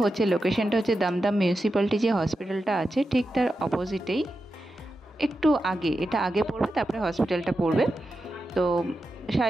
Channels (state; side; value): normal; both; correlation 0.90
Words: হচ্ছে লোকেশনটা হচ্ছে দমদম মিউনিসিপ্যালিটি যে হসপিটালটা আছে ঠিক তার অপোজিটেই, একটু আগে, এটা আগে পড়বে, তারপরে হসপিটালটা পড়বে। তো